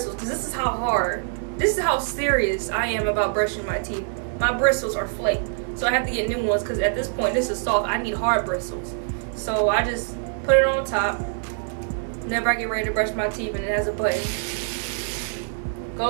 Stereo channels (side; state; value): left; silent; 62 dB below the other